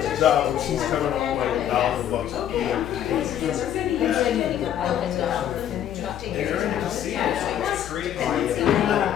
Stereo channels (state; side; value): quieter; right; 10.5 dB